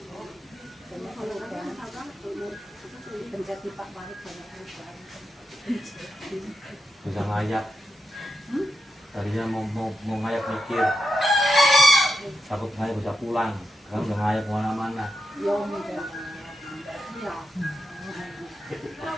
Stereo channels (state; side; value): normal; both; correlation 0.86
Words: penjati Pak Wahid banyak perubahan. Bisa ngayak. Tadinya mau ngayak mikir. Takut ngayak bisa pulang. Sekarang udah ngayak kemana-mana. Ya udah. Ya.